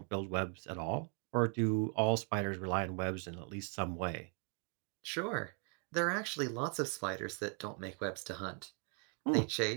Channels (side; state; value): left; quieter; 38.3 dB